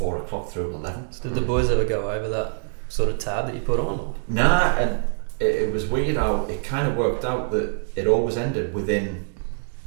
o'clock through 11. did the boys ever go over that sort of tab that you put on? Or? Nah, and it was weird how it kind of worked out that it always ended within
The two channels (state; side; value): silent; left; digital silence